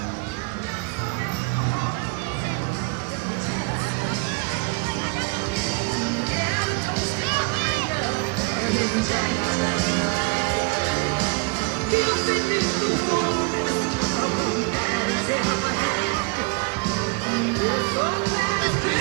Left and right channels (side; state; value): left; quieter; 30.0 dB